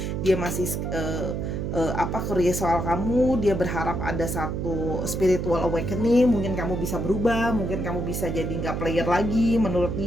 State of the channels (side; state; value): right; noise; hum, 2 dB below the sound